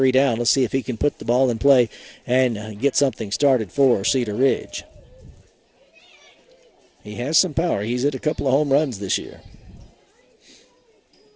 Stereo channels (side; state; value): both; identical; correlation 1.00